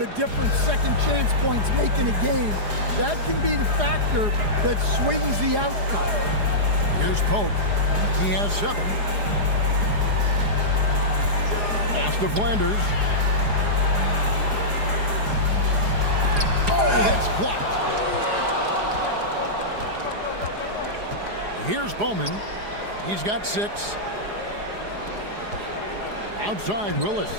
a difference second chance points make in a game. That can be the factor that swings the outcome. Here's Pope. He has 7. Pass to Flanders. Oh, that's blocked. Here's Bowman. He's got 6. Outside, Willis.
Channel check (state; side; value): late; left; 4.9 ms